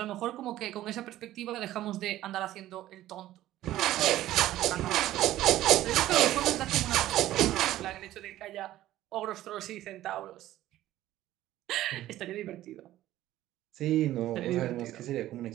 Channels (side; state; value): left; quieter; 14.3 dB